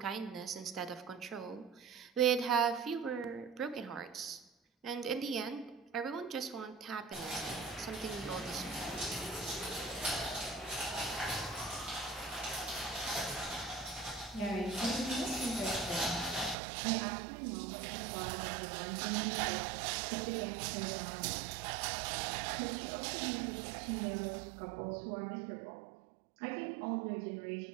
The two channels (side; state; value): left; drops out; at 16.6 s